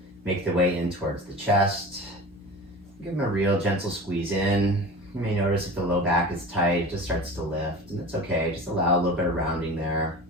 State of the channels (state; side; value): normal; both; correlation 0.35